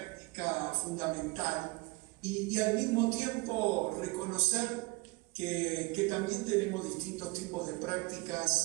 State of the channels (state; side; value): quieter; left; 25.2 dB